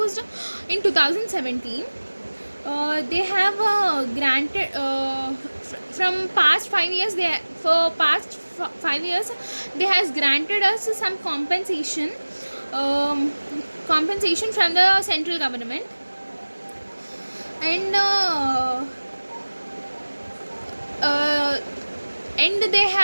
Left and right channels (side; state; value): both; inverted; correlation -1.00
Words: in 2017. They have granted from past 5 years. For past 5 years they has granted us some compensation from the central government, and